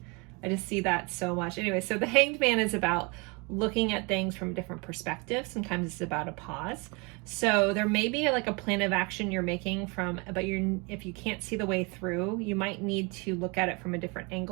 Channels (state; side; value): quieter; left; 29.6 dB